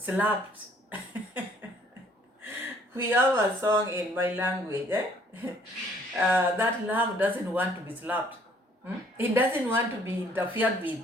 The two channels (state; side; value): normal; both; correlation 0.61